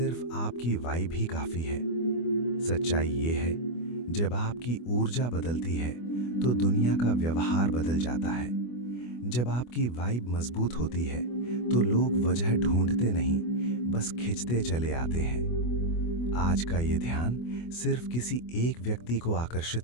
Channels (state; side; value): late; right; 24 ms